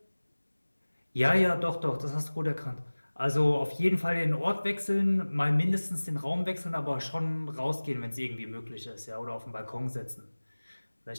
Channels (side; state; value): both; inverted; correlation -1.00